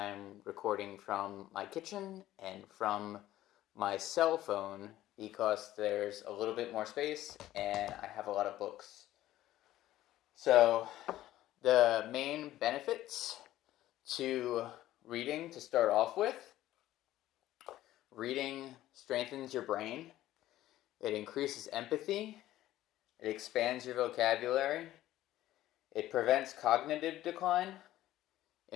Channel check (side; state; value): right; quieter; 14.4 dB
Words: recording from my kitchen and from my cell phone because there's a little bit more space and I have a lot of books. So, the main benefits to reading to start off with: reading strengthens your brain, it increases empathy, it expands your vocabulary, it prevents cognitive decline,